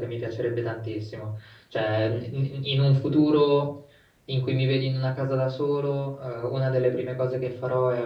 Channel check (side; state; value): both; identical; correlation 1.00